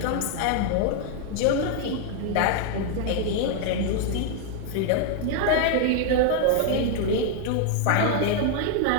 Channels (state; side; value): different; both; correlation 0.00